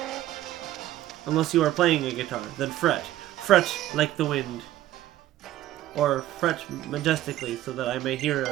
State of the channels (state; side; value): quieter; left; 14.1 dB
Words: Unless you are playing a guitar, then fret. Fret like the wind. Or fret majestically so that I may hear